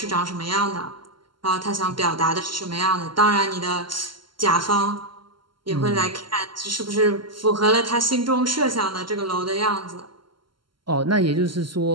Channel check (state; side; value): late; left; 0.72 ms